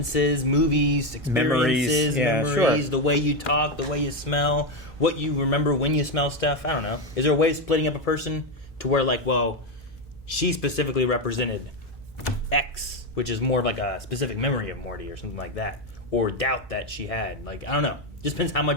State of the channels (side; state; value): both; normal; correlation 0.09